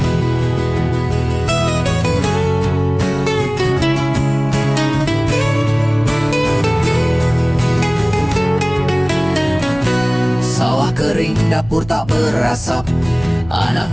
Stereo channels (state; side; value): noise; left; hum, 18 dB below the sound